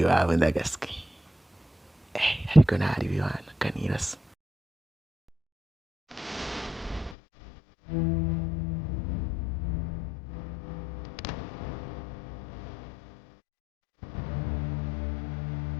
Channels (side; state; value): right; drops out; at 7.2 s